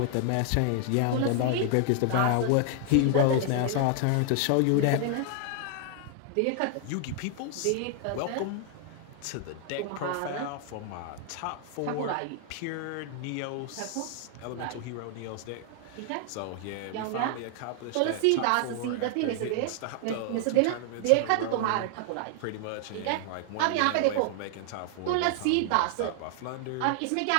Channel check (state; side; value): different; both; correlation 0.00